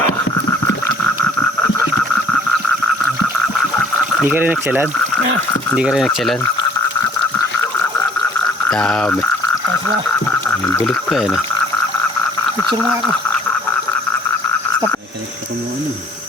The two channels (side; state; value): both; normal; correlation 0.56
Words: Hindi ka rin nagsalan? Hindi ka rin nagsalan? Dami. Asa, May bulig pa yan. picture nga ako. Ito mo ano.